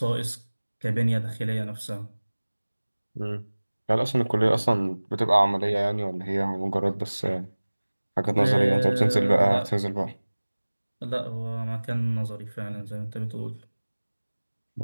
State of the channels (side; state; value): both; inverted; correlation -1.00